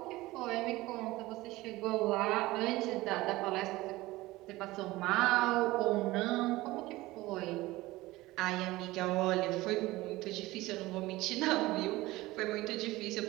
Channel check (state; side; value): quieter; left; 18.9 dB